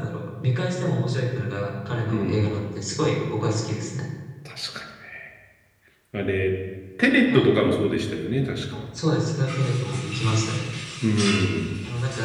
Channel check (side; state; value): both; identical; correlation 1.00